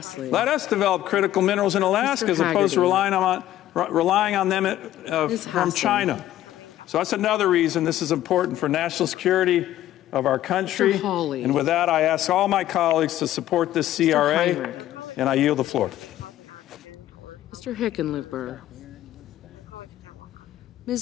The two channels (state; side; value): quieter; right; 13.3 dB